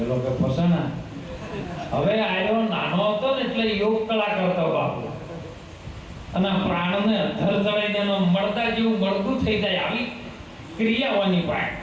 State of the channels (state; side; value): identical; both; correlation 1.00